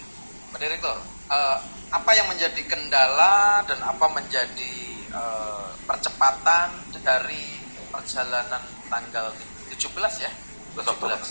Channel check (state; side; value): inverted; both; correlation -1.00